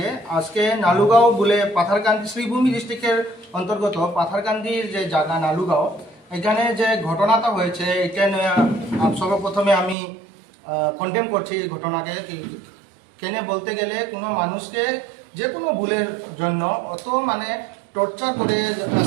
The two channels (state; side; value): drops out; left; at 10.0 s